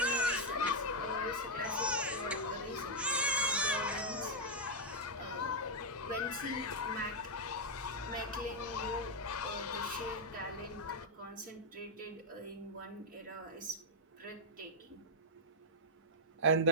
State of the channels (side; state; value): both; normal; correlation -0.03